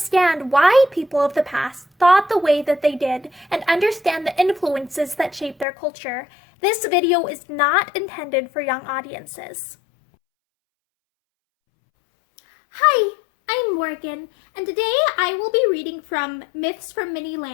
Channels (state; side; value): drops out; right; at 5.7 s